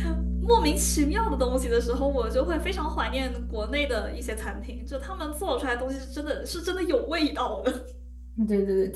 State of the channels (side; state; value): both; identical; correlation 1.00